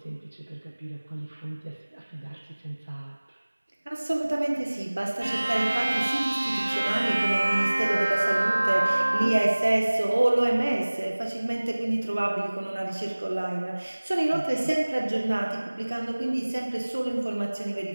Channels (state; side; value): inverted; both; correlation -1.00